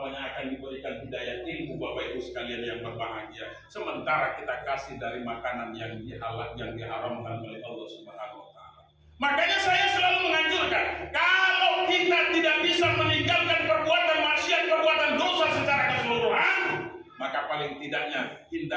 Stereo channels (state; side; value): identical; both; correlation 1.00